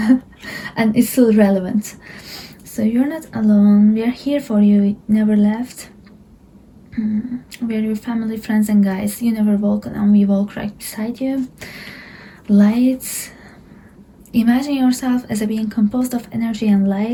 And it's still relevant. So you're not alone. We are here for you. Never left. We are your family, friends, and guides. You never walk alone. We walk right beside you. Lights. Imagine yourself as a being composed of energy and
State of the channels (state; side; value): identical; both; correlation 1.00